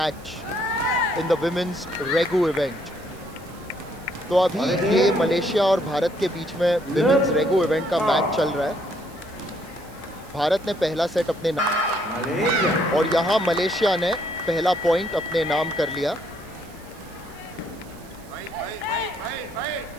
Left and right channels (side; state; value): right; noise; hiss, 24 dB below the sound